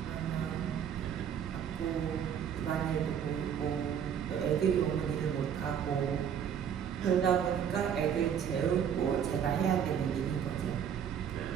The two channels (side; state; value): left; quieter; 8.4 dB